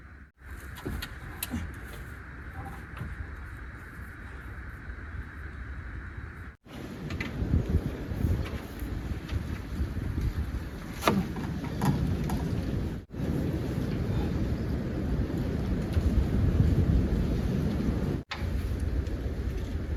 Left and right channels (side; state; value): both; identical; correlation 1.00